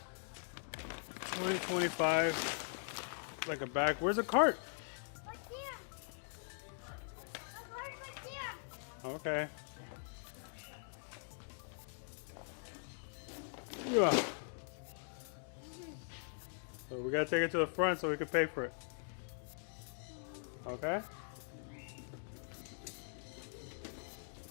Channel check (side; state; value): right; silent; digital silence